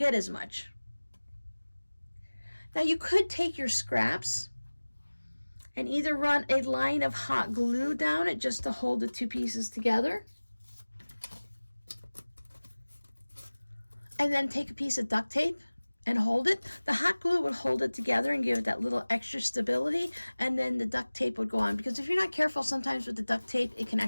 as much. Now you could take your scraps and either run a line of hot glue down it just to hold the 2 pieces together. And then take a piece of duct tape and hold it. The hot glue would hold it together and give it that little extra stability, and then the duct tape would go on. Because if you're not careful, sometimes with the duct tape, it can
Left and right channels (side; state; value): both; inverted; correlation -1.00